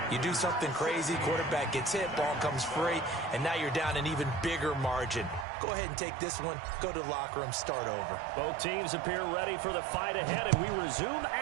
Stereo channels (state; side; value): drops out; left; at 5.5 s